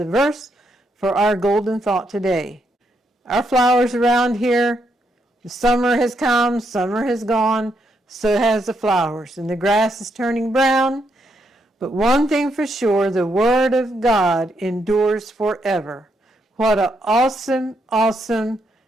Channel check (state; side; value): normal; both; correlation 0.78